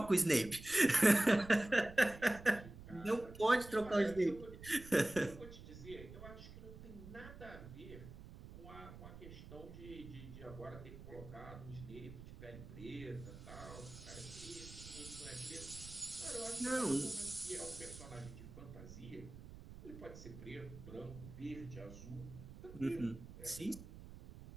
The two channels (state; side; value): noise; right; rumble, 14 dB below the sound